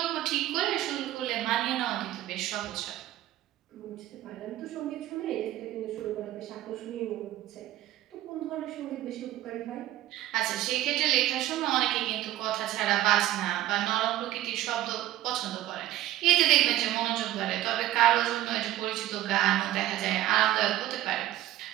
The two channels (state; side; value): quieter; left; 14.1 dB